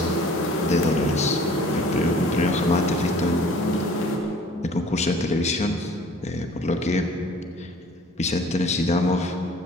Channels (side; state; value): both; normal; correlation 0.50